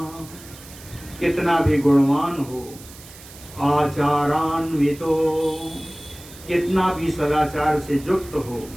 कितना भी गुणवान हो, आचारान्वितो, कितना भी सदाचार से युक्त हो,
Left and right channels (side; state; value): right; noise; hiss, 19 dB below the sound